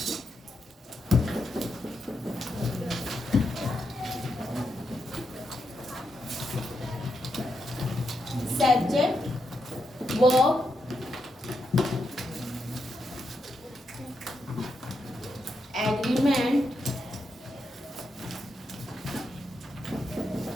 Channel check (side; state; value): both; normal; correlation 0.84